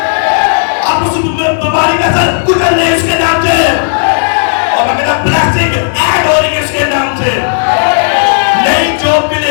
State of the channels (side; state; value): right; silent; digital silence